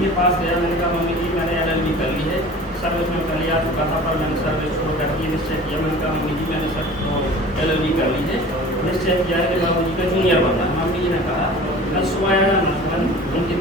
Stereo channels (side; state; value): both; normal; correlation 0.42